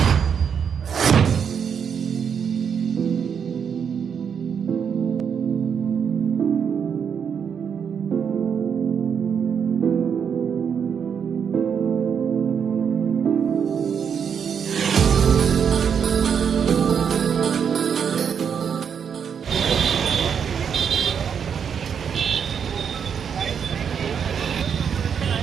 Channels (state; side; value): quieter; left; 7.3 dB